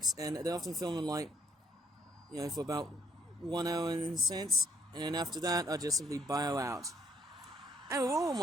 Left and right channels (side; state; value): both; normal; correlation 0.67